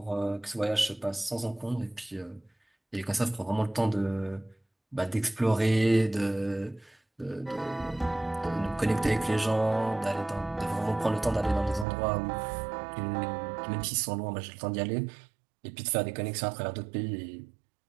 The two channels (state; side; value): drops out; left; at 11.9 s